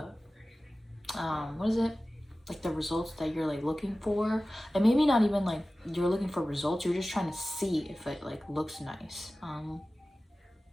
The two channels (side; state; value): both; normal; correlation 0.96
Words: what is it, like the results that you're like looking for. And maybe not even like you're looking for results, you're just trying to see if it like looks nice.